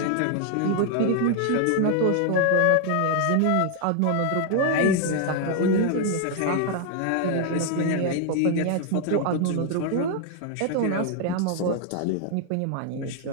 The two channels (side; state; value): both; different; correlation 0.00